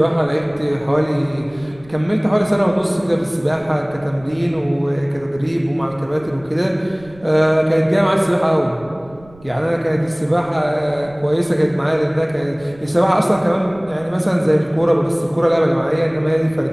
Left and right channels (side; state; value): right; noise; rumble, 24 dB below the sound